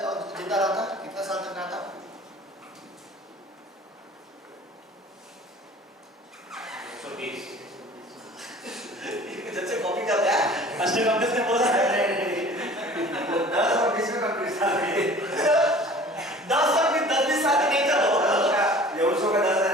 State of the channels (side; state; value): both; normal; correlation 0.46